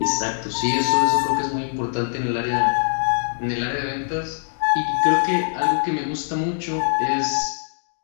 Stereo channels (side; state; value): right; silent; digital silence